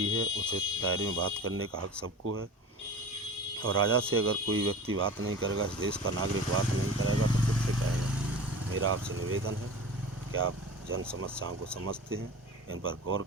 है, उचित दायरे में बात करने का हक सबको है। और राजा से अगर कोई व्यक्ति बात नहीं करेगा, इस देश का नागरिक बात नहीं करेगा, तो किससे करेगा। मेरा आपसे निवेदन है कि आप जन समस्याओं को समझते हैं, इन पर गौर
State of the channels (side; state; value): both; normal; correlation 0.35